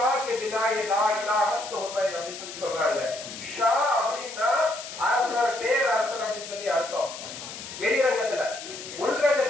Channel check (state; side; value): noise; left; hiss, 11 dB below the sound